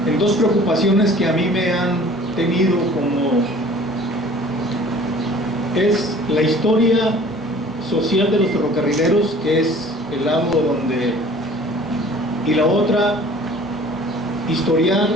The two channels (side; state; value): both; normal; correlation 0.49